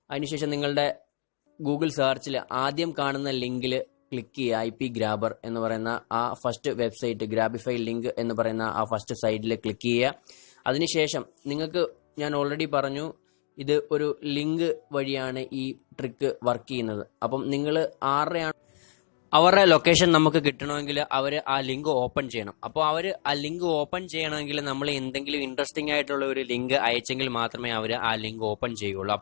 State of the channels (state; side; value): silent; right; digital silence